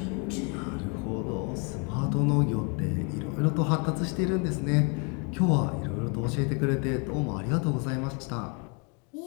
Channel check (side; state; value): right; quieter; 34.9 dB